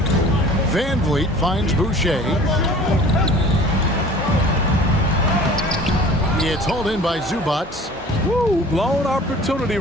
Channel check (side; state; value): both; normal; correlation 0.46